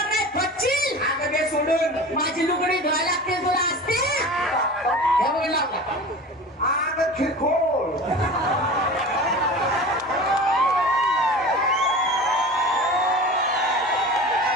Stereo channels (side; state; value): both; normal; correlation 0.35